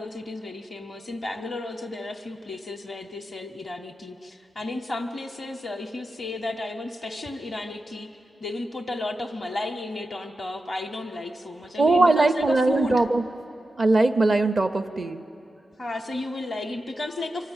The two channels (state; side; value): normal; both; correlation 0.91